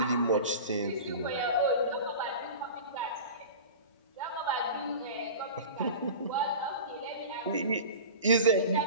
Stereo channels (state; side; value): inverted; both; correlation -0.34